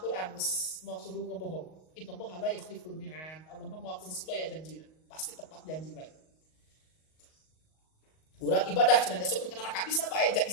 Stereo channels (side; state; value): right; late; 38 ms